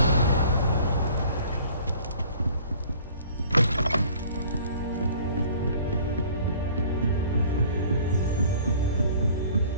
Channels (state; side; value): inverted; both; correlation -0.51